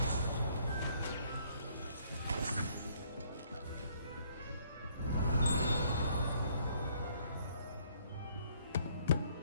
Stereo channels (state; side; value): inverted; both; correlation -0.64